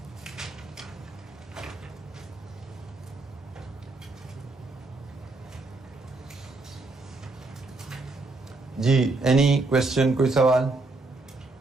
जी, एनी क्वेश्चन, कोई सवाल?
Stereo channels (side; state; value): left; quieter; 3.3 dB